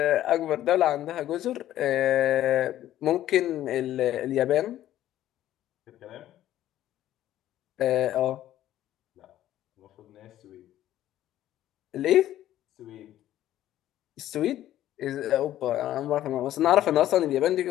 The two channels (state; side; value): quieter; right; 13.0 dB